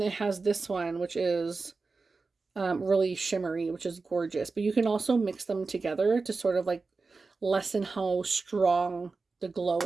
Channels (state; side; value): quieter; left; 4.1 dB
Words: has this one, which is really shimmery, which is gorgeous. But you can also mix them together to sort of like lessen how strong the glow